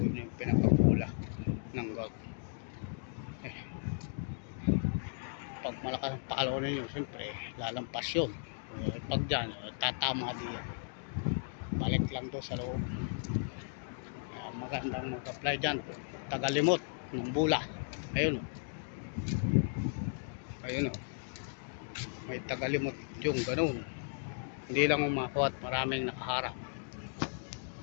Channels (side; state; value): right; silent; digital silence